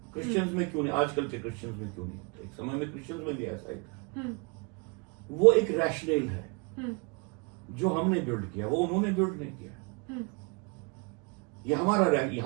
क्रिश्चियंस में क्यों नहीं, आजकल के क्रिश्चियंस में क्यों नहीं होता? एक समय में क्रिश्चियंस में भी ऐसा ही था। वो एक रैशनल है जो हमने बिल्ड किया, वो उन्होंने बिल्ड नहीं किया। ये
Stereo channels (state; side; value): quieter; left; 31.4 dB